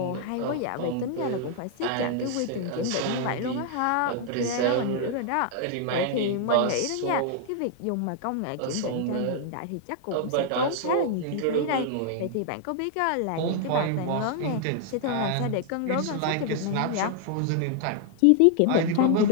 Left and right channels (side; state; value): both; different; correlation 0.00